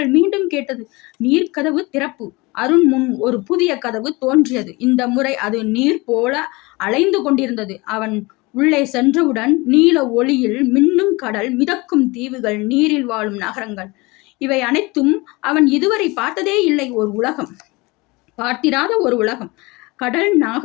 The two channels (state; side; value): quieter; right; 24.1 dB